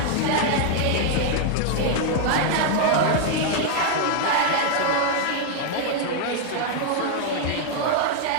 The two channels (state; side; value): different; both; correlation 0.00